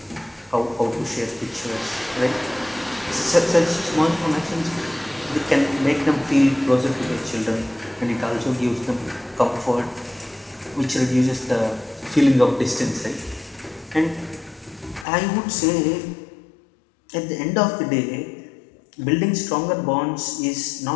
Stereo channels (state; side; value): drops out; right; at 15.1 s